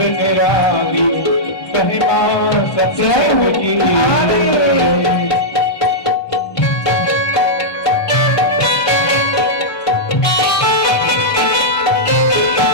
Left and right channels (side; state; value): right; late; 1.3 ms